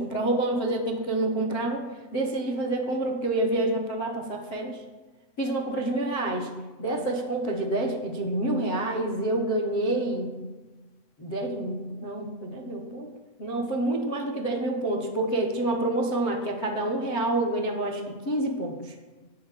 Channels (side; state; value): right; late; 8.0 ms